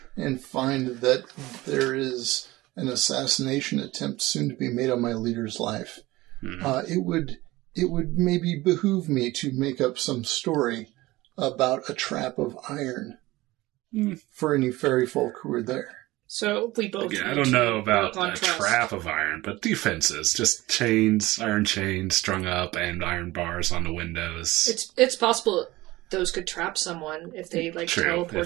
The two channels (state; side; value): quieter; left; 19.1 dB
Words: and find that there is an assassination attempt soon to be made on my leader's life, it would maybe behoove me to make up some story about a trap of iron for any fairy folk who are there. So we both. I don't know about a trap of iron, but defenses, just chains, iron chains strung up, and iron bars on the windows. It's possible those could trap someone if they